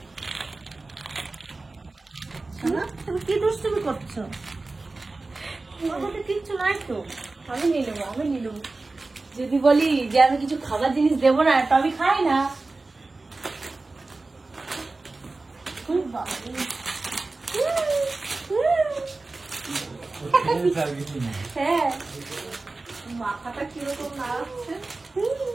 তুমি কি দুষ্টুমি করছো? কিচ্ছু নাই তো, আমি নিয়ে নেবো। যদি বলি যে আমি কিছু খাবার জিনিস দেবো না তো আমি খাই না। হ্যাঁ মাথাটা কিরকম নাড়াচ্ছে।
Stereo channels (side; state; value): left; quieter; 3.4 dB